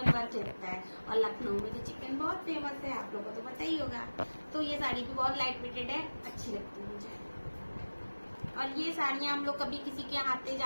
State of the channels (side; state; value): both; inverted; correlation -1.00